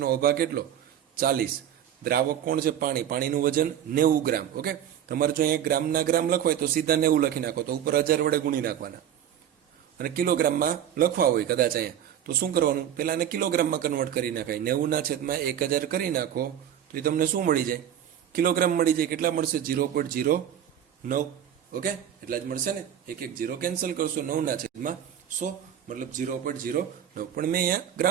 ઓભા કેટલો? 40. દ્રાવક કોણ છે? પાણી. પાણીનું વજન 90 ગ્રામ. ઓકે, તમારે જો અહીંયા ગ્રામના ગ્રામ લખવાય તો સીધા 90 લખી નાખો, તો ઉપર 1000 વડે ગુણી નાખવાના. અને કિલોગ્રામમાં લખવા હોય કદાચ અહીંયા, તો શું કરવાનું? પહેલા એને કિલોગ્રામમાં કન્વર્ટ કરી નાખાય. 90 ના છેદમાં 1000 કરી નાખો તો એ તમને શું મળી જાય? કિલોગ્રામ મળી જાય. કેટલા મળશે? 0.09. ઓકે, એટલા જ મળશે ને. એક 0 કેન્સલ કરશો. 9 ના છેદમાં 100 મતલબ 0.09. પણ મેં અહીંયા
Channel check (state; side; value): quieter; left; 10.1 dB